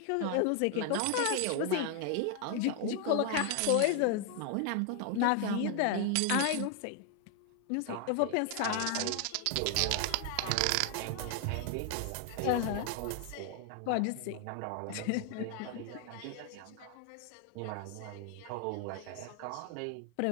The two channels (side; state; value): both; different; correlation 0.00